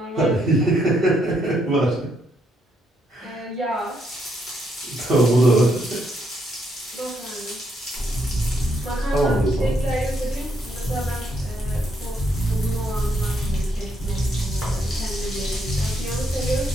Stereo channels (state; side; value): normal; both; correlation 0.75